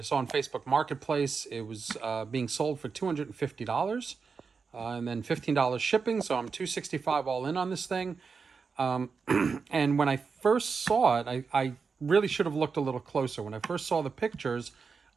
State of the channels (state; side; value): quieter; left; 5.2 dB